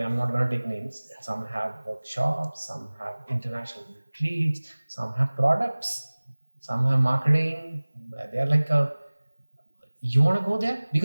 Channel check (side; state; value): both; inverted; correlation -1.00